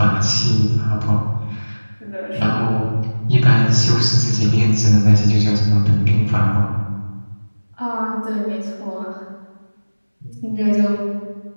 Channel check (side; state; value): both; inverted; correlation -1.00